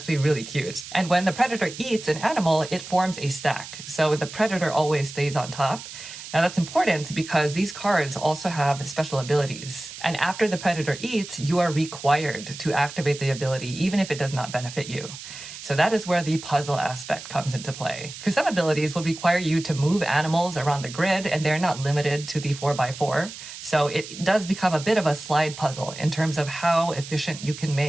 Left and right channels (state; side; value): noise; right; hiss, 12 dB below the sound